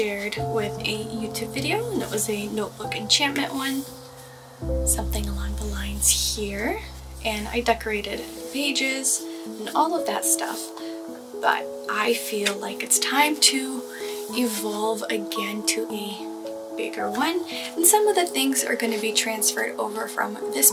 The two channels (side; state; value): both; identical; correlation 1.00